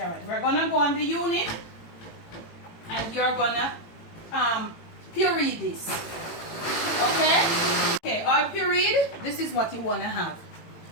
We're going to go on the unit. And you're going to puree this. Okay? Okay, all pureed. This is what you want to have.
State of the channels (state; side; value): late; right; 18 ms